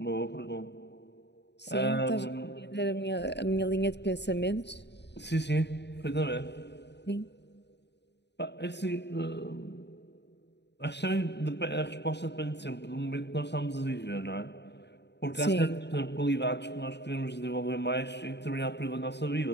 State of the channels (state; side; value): late; right; 0.50 ms